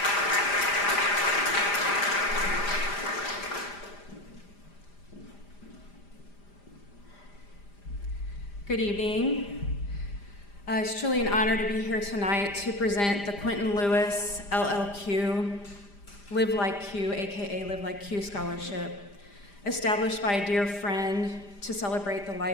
Good evening. It's truly an honor to be here tonight to present the Quentin Lewis LLQ, Live Like Q, aka Live Like Q Scholarship, established by a dear friend to celebrate the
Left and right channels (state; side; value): late; right; 5.0 ms